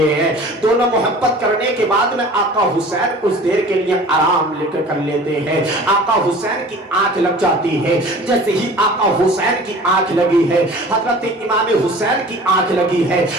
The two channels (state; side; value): normal; both; correlation 0.44